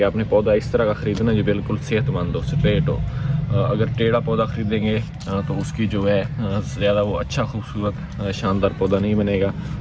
आपने पौधा इस तरह का ख़रीदना है जो बिल्कुल सेहतमंद हो, स्ट्रेट हो। अगर टेढ़ा पौधा ख़रीदेंगे तो उसकी जो है ज़्यादा वो अच्छा खूबसूरत शानदार पौधा नहीं बनेगा।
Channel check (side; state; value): both; identical; correlation 1.00